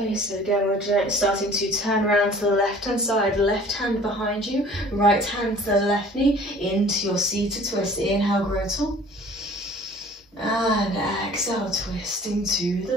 So again, we're starting to turn around to the left-hand side, left hand behind you, right hand to the left knee, into your seated twist. Inhale, grow tall. And exhale, twisting to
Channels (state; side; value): normal; both; correlation 0.49